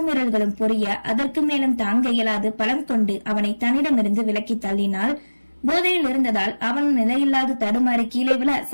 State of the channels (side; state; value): both; inverted; correlation -1.00